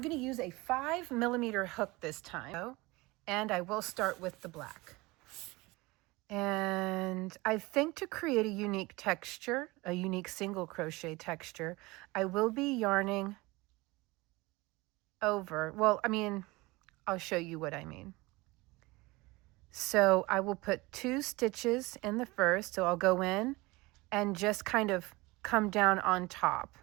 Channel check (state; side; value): quieter; left; 22.6 dB